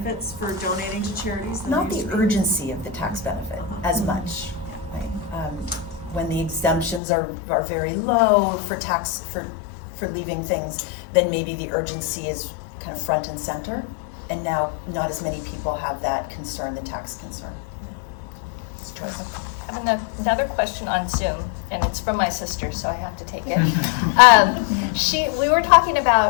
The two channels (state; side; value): drops out; right; at 7.0 s